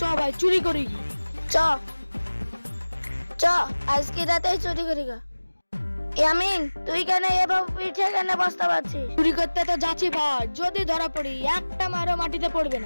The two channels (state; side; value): inverted; both; correlation -1.00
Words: ভাই চুরি করি কি? চ আজকে রাতেই চুরি করি গা। ইয়ামিন, তুই কেন এভাবে পিঠে কেন বসতে পারছিস? চুরি করতে তো যাচ্ছি ভাই, যদি ধরা পড়ি একটা মারও মাটিতে পড়বে